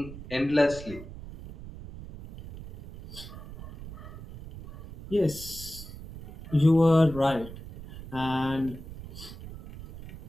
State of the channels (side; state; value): right; noise; rumble, 14 dB below the sound